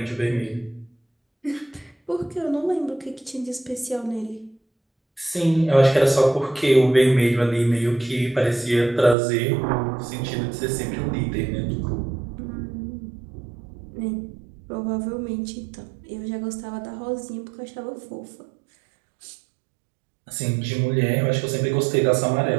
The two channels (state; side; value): drops out; left; at 9.2 s